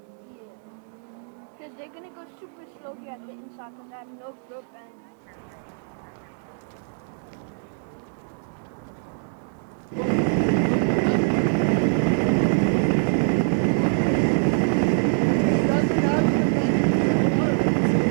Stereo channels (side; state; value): left; silent; 61 dB below the other